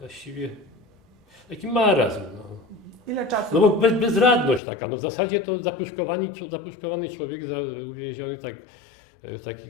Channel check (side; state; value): right; drops out; at 4.6 s